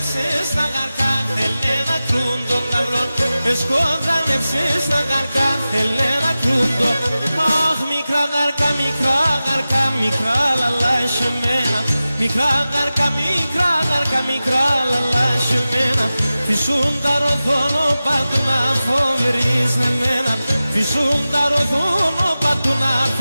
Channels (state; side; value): inverted; both; correlation -0.95